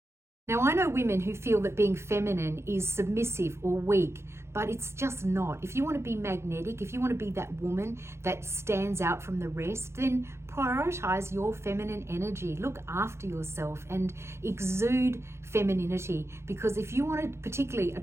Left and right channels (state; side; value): late; left; 0.13 ms